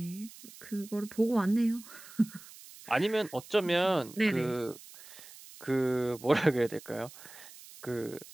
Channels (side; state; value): right; noise; hiss, 18 dB below the sound